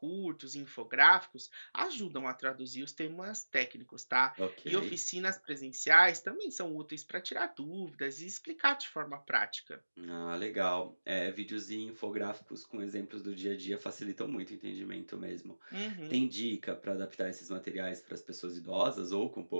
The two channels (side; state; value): both; inverted; correlation -1.00